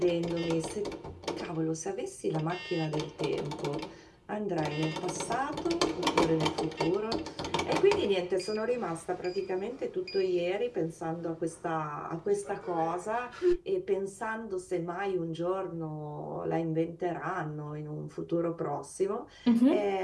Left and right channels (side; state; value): both; identical; correlation 1.00